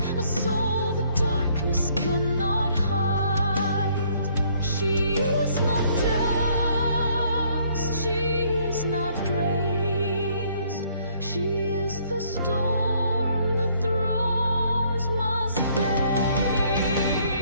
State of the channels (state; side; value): inverted; both; correlation -0.64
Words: a soul the darkness cannot hide. She is not dust, she is not praised. She is the storm the thrones must face.